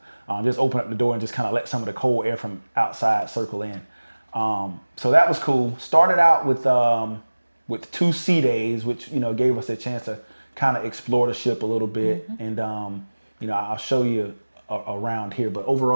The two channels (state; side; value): inverted; both; correlation -1.00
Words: Just open up the door and just kind of let some of the cold air from outside circle in. So that was cool. Started out with 2 sea days, which gave us a chance to kind of explore the ship a little bit. And I'll show you around here. But